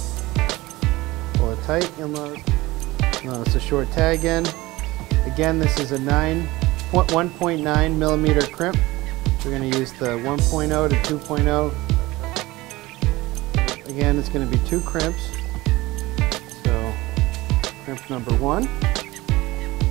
Pull it tight, you'll notice a short tag end. Again, this is a 1.9 millimeter crimp. We're going to use the 1.0 to 2.0. Again, it's going to be 2 crimps. So, crimp number 1.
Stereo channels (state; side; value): quieter; left; 19.7 dB